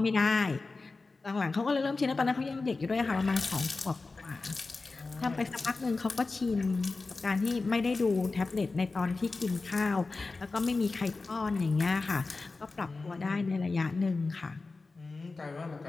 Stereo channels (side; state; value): right; quieter; 3.7 dB